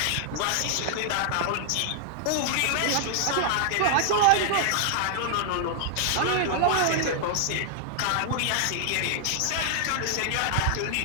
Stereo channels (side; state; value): both; different; correlation -0.01